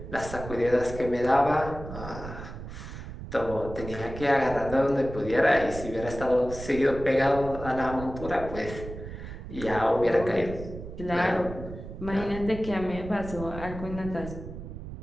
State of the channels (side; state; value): right; noise; rumble, 10 dB below the sound